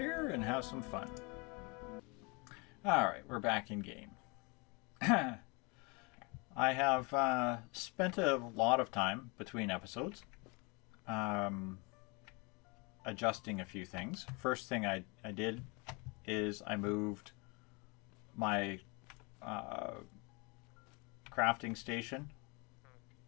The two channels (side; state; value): right; quieter; 29.6 dB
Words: and have some fun. Alright, we're back in game. I have spent a lot of time between episodes adjusting a few things. First thing I did is I moved my crafting station